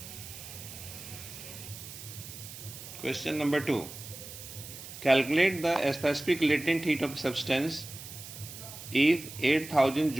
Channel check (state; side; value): noise; right; hiss, 13 dB below the sound